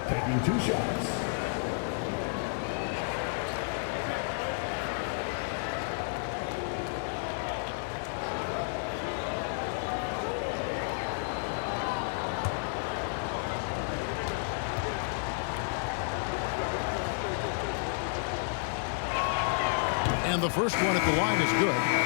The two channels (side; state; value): right; silent; digital silence